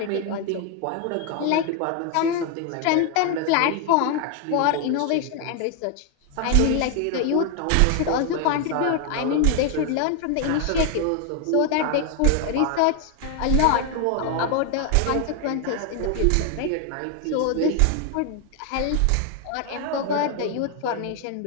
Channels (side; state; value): both; different; correlation 0.01